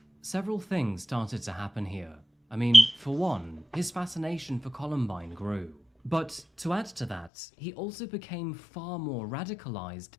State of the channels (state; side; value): drops out; right; at 7.3 s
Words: Several things started to happen here. I mean, for one, his fascination for Columbine grew. But to add to that, he also became far more radicalized